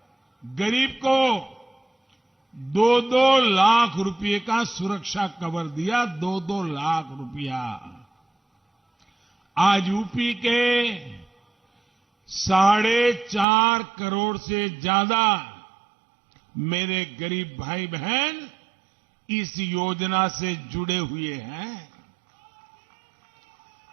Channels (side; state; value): left; drops out; at 13.5 s